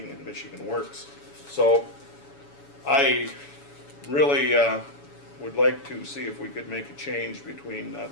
and Michigan Works. So I really would like to see if we could make a change between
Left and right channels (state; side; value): late; right; 7.1 ms